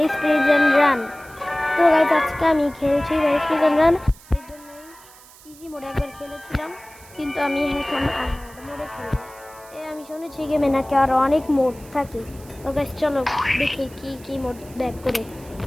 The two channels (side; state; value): right; noise; hiss, 23 dB below the sound